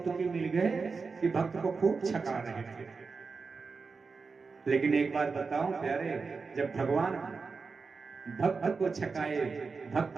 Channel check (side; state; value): left; quieter; 4.7 dB